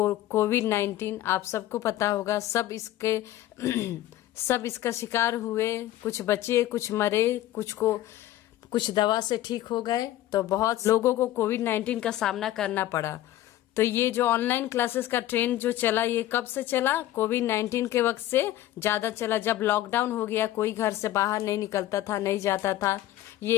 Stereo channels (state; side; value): quieter; right; 14.1 dB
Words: आप सबको पता होगा, सब इसका शिकार हुए। कुछ बचे, कुछ मरे, कुछ दवा से ठीक हो गए। तो बहुत लोगों को कोविड-19 का सामना करना पड़ा। तो ये जो ऑनलाइन क्लासेस का ट्रेंड जो चला, ये कब से चला? कोविड-19 के वक्त से ज्यादा चला। जब लॉकडाउन हो गया, कोई घर से बाहर नहीं निकलता था, नहीं जाता था।